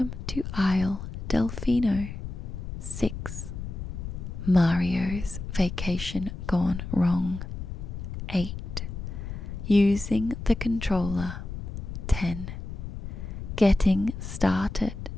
to Isle Delfino. 6. Mario's Vacation Gone Wrong. 8. Using the controller. 10. Getting started.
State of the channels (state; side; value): noise; left; rumble, 7 dB below the sound